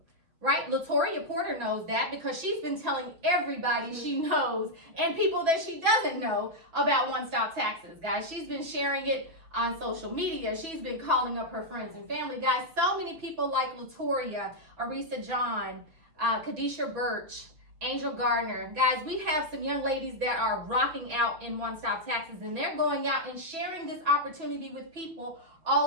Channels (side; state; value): left; late; 6.1 ms